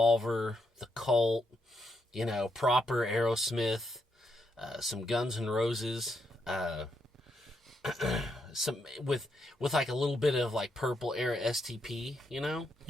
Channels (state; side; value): normal; both; correlation 0.79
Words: The Cult, proper Aerosmith, some Guns N' Roses, some with like a little bit of like Purple era STP,